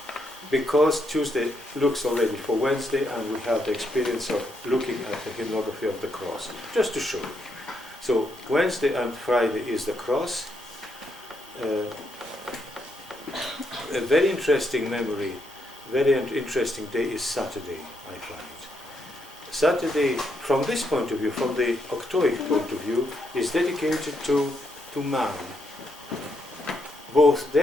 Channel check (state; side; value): normal; both; correlation 0.78